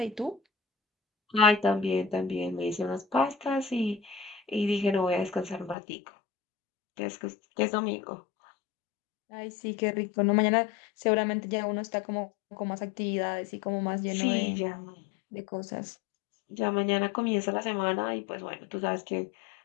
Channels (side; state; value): right; drops out; at 5.8 s